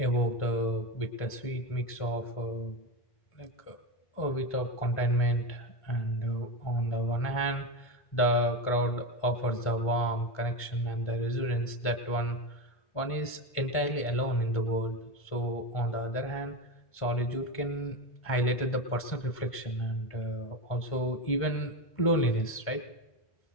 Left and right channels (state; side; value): late; right; 1.5 ms